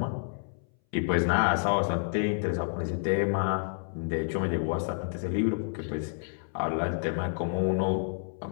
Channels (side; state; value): right; silent; 58 dB below the other